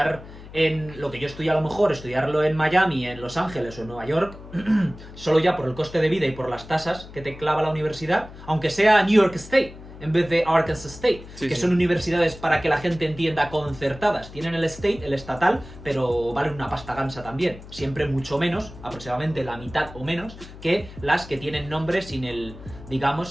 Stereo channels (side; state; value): left; noise; hum, 16 dB below the sound